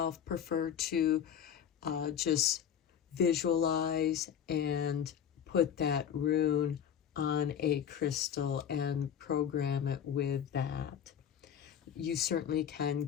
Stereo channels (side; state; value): right; quieter; 8.7 dB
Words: prefer to just visualize and put that rune on a crystal and program it with that. You certainly can